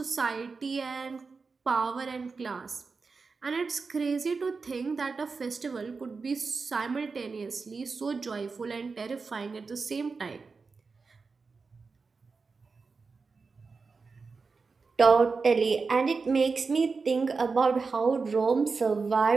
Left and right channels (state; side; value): quieter; left; 4.6 dB